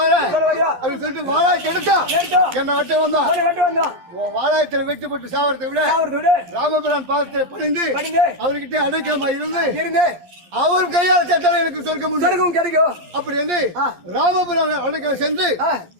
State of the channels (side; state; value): left; late; 11 ms